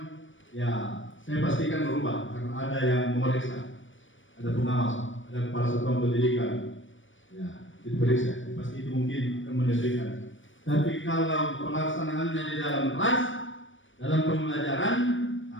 ya saya pastikan berubah karena ada yang memeriksa, ada pengawas, ada kepala satuan pendidikan, ya diperiksa, pasti itu mungkin akan menyesuaikan. Tapi kalau pelaksanaannya di dalam kelas, dalam pembelajaran,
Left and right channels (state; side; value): late; right; 0.56 ms